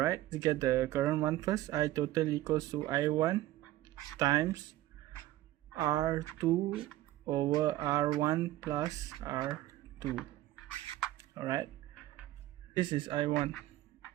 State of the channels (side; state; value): left; quieter; 15.3 dB